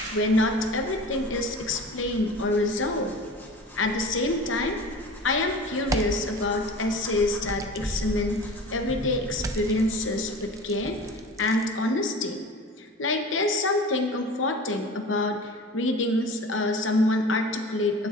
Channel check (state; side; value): normal; both; correlation 0.37